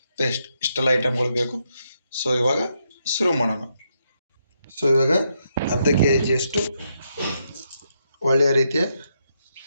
ಪೇಸ್ಟ್, ಇಷ್ಟೆಲ್ಲ ಐಟಮ್ಗಳು ಬೇಕು. ಸೊ ಇವಾಗ ಶುರು ಮಾಡೋಣ. ಸೊ ಇವಾಗ ಅರ್ಧ ಕೆ ಜಿಯಷ್ಟು ಒಳ್ಳೆಯ ರೀತಿಯ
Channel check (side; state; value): both; inverted; correlation -0.80